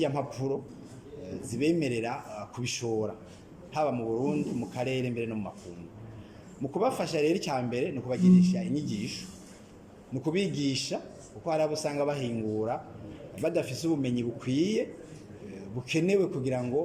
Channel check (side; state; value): both; identical; correlation 1.00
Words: mpapuro zibemerera kubishora haba mu Burundi mu karere mbere no mu makungu mu kubafasha rero icyambere no kubagirisha inyigisho no kubigisha uko hari abo usanga bahingura badafise ubumenyi bukwiye bukenewe kugira